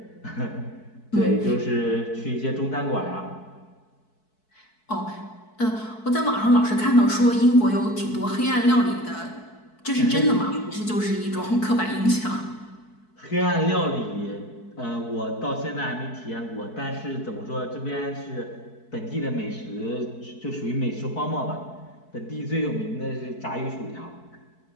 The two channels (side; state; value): right; late; 4.6 ms